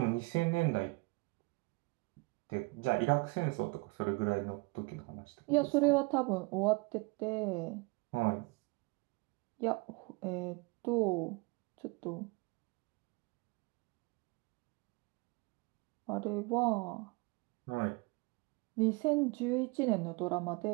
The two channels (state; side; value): quieter; left; 26.8 dB